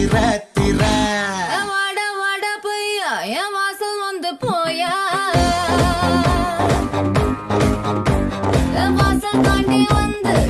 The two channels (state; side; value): identical; both; correlation 1.00